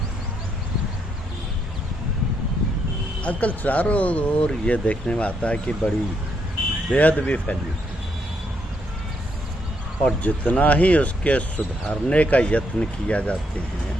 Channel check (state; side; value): normal; both; correlation 0.75